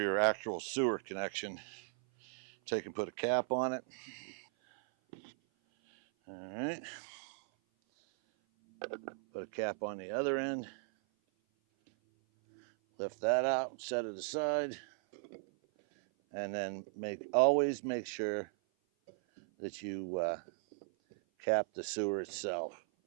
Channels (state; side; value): silent; left; 53 dB below the other